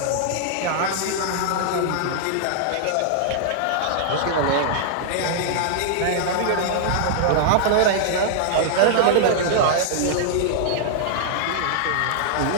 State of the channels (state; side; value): different; both; correlation -0.01